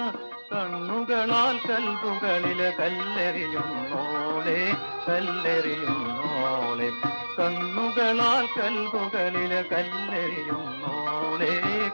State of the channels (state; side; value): inverted; both; correlation -1.00